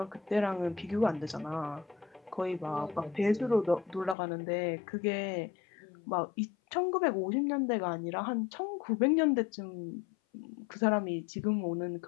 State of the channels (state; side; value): drops out; right; at 4.2 s